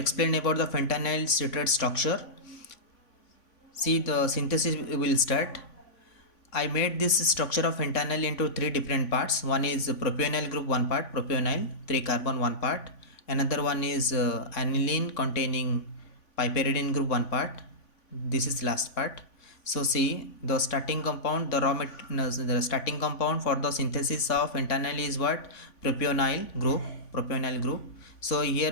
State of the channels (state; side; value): late; right; 3.5 ms